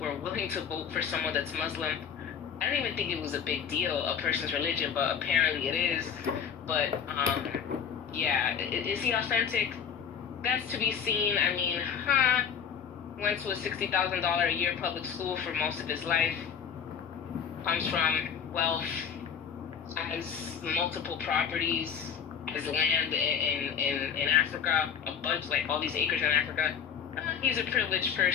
willing to vote for someone that's Muslim. I didn't even think it was a big deal, a person's religion, but apparently it is. But, yeah, is he authentic? That's to be seen. I mean, went to a $60,000 a year public school for most of his life, comes from wealth, has multiple properties, has land in Africa, a bunch, like all these acres in Africa. He's a privileged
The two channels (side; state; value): right; quieter; 7.5 dB